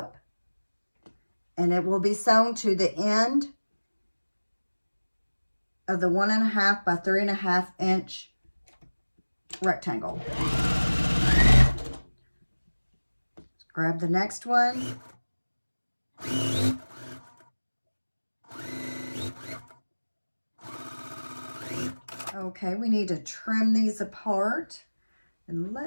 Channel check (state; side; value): inverted; both; correlation -1.00